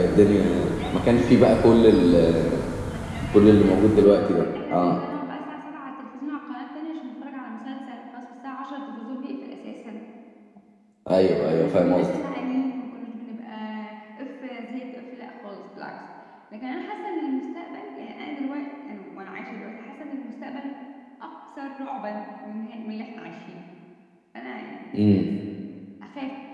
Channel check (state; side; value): identical; both; correlation 1.00